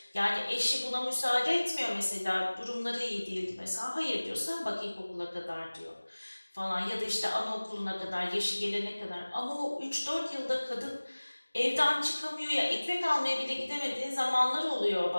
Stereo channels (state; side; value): inverted; both; correlation -1.00